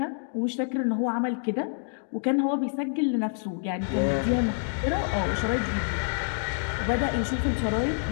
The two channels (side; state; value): right; silent; digital silence